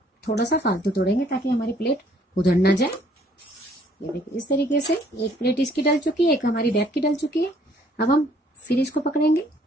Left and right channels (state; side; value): normal; both; correlation 0.62